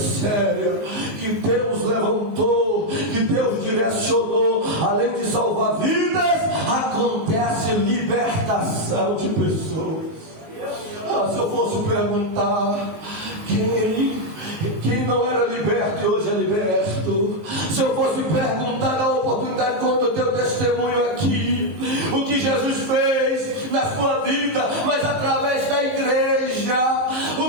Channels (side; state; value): left; late; 19 ms